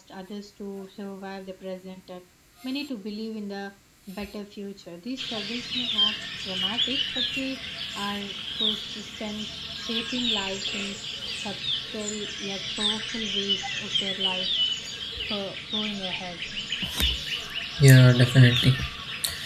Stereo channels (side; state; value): both; identical; correlation 1.00